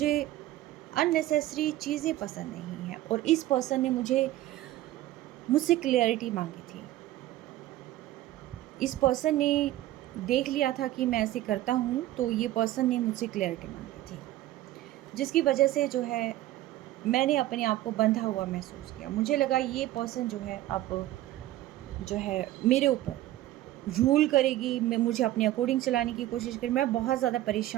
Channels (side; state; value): left; quieter; 15.0 dB